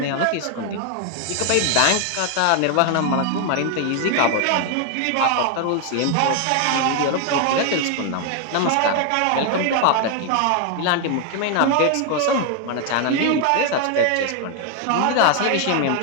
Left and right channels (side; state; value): both; different; correlation 0.00